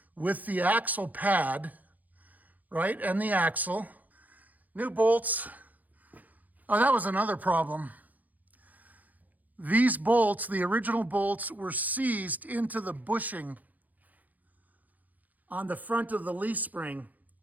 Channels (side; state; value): left; late; 0.080 ms